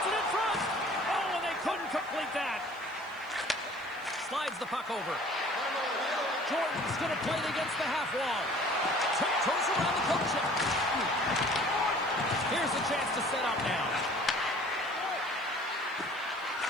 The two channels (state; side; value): noise; right; hiss, 28 dB below the sound